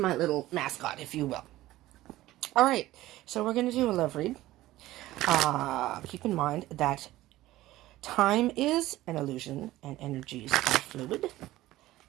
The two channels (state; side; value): quieter; left; 16.2 dB